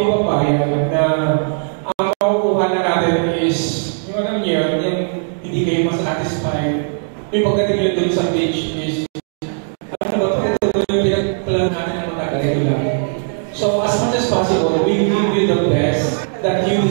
papayag na ang makukuha na natin is yung ano niya, hindi kayo masatisfied. Yung pagdating nyo doon sa beach is ano ba ito yung pinag-plan natin na matagal lang. So, as much as possible, we will do the best that you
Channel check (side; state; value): left; silent; digital silence